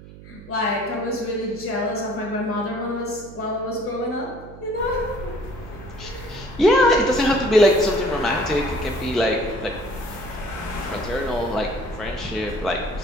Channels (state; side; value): noise; right; hum, 17 dB below the sound